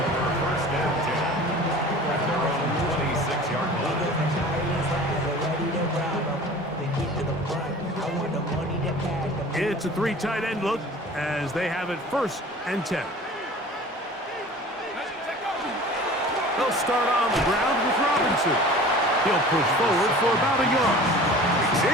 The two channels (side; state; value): both; normal; correlation 0.42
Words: First and 10 at their own 26-yard line. It's a three tight end look as they have it first and 10. They'll start on the ground with Robinson. He'll push forward for about a yard.